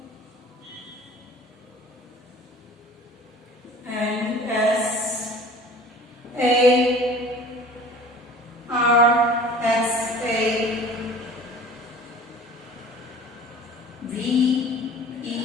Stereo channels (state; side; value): normal; both; correlation 0.45